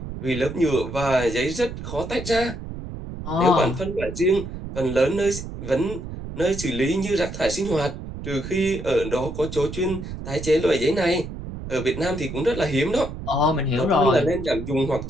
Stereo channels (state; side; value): noise; right; rumble, 9 dB below the sound